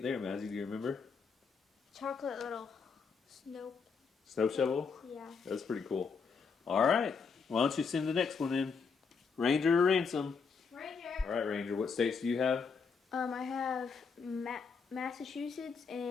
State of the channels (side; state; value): right; quieter; 5.4 dB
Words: there, Mazzy? Do you remember? Chocolate little snow. Snow shovel? Yeah. That's pretty cool. All right. Why don't you send the next one in? Ranger or Ransom? Ranger. All right, Ranger. What states do you have? I have Massachusetts